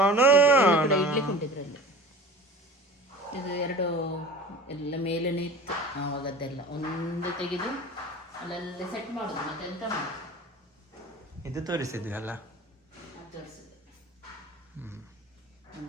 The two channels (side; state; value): both; normal; correlation 0.39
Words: ಇಡ್ಲಿ ಕೊಂಡಿದ್ರಲ್ಲಿ ಇದು ಎರಡು ಎಲ್ಲ ಮೇಲೇನೆ ಇತ್ತು. ಆವಾಗದ್ದೆಲ್ಲ ಒಂದು ತೆಗೆದು ಅಲ್ಲಲ್ಲಿ ಸೆಟ್ ಮಾಡೋದು. ಮತ್ತೆ ಎಂತ ಮಾಡೋದು, ಇದು ತೋರಿಸಿದ್ವಿ ಅಲ್ಲ. ಅದು ತೋರಿಸಿದೆ.